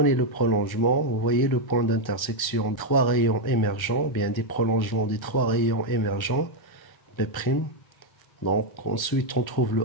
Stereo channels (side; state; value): right; late; 1.2 ms